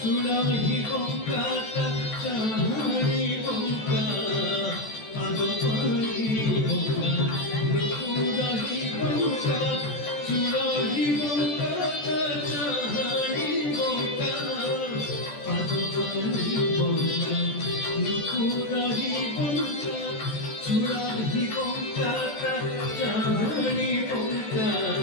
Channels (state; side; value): late; right; 14 ms